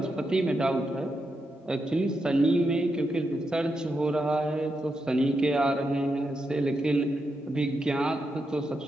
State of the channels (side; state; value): both; normal; correlation 0.85